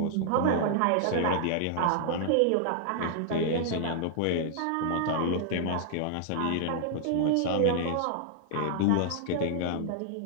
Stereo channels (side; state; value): both; different; correlation -0.01